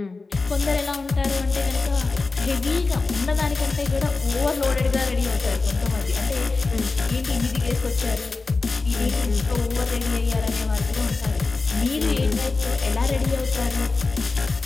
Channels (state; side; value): quieter; right; 3.8 dB